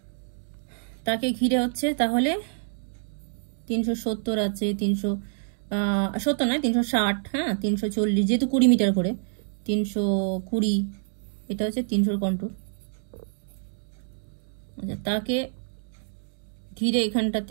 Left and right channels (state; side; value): silent; left; digital silence